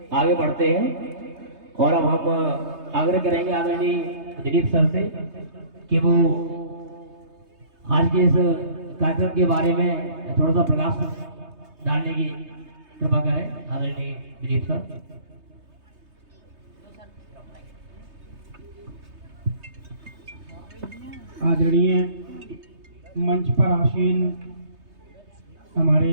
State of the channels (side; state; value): left; late; 3.3 ms